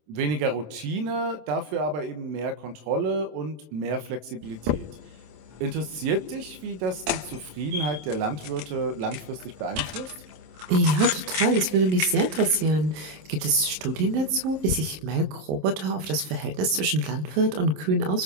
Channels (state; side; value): late; left; 27 ms